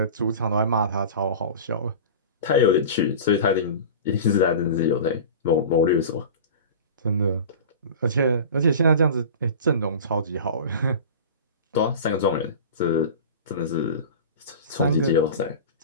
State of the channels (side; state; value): both; inverted; correlation -0.34